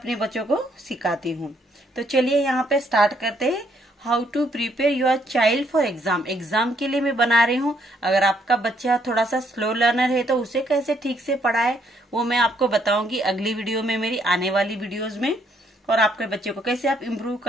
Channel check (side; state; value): both; normal; correlation 0.70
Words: बच्चों को सिखाती हूँ। तो चलिए यहाँ पे स्टार्ट करते हैं। How to prepare your child for exam. Exam के लिए मैं बना रही हूँ। अगर आपका बच्चा थोड़ा सा स्लो लर्नर है तो उसे कैसे ठीक से पढ़ाए वो मैं आपको बताऊंगी अगली वीडियो में, मेरी आने वाली वीडियोज में। और आपके बच्चे को कैसे आप इम्प्रूव